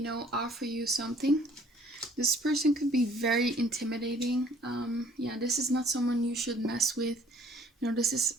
offer you something. This person could be very intimidating. Yeah, this is not someone you should mess with. This is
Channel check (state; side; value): normal; both; correlation 0.58